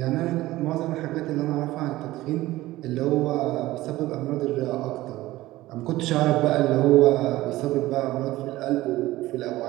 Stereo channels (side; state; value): left; quieter; 17.2 dB